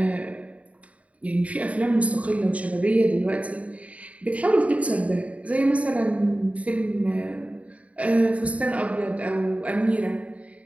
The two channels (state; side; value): late; left; 0.066 ms